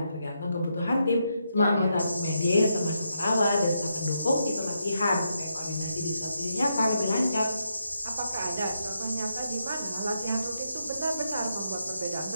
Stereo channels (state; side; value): inverted; both; correlation -0.81